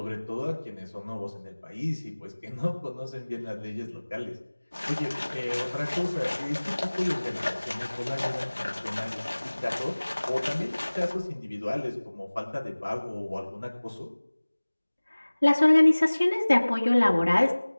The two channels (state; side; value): inverted; both; correlation -1.00